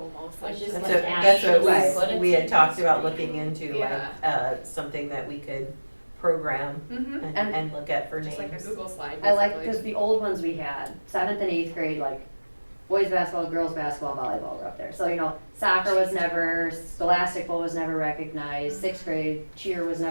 like Just just like like. That's Right. what we had talked about looking into, like, Yeah. something that we could program Mm-hmm, and look at for names. just like a Google slide, I like, basically. cause the old ones we had, 7th and 8th grade, like, boys basketball, girls basketball, volleyball were up there. So, you know, soccer was never, scholastic bowl was never recognized, 6th grade cheer was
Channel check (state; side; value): inverted; both; correlation -1.00